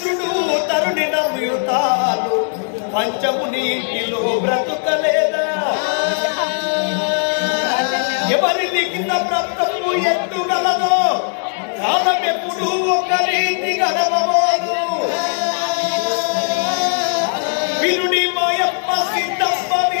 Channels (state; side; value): silent; right; digital silence